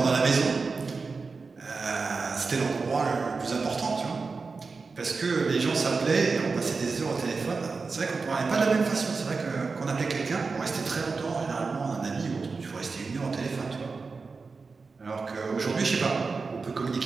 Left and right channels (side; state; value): left; quieter; 4.4 dB